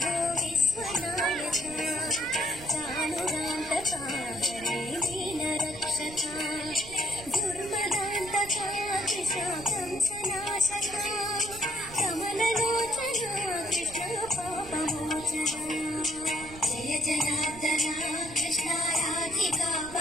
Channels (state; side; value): noise; right; rumble, 16 dB below the sound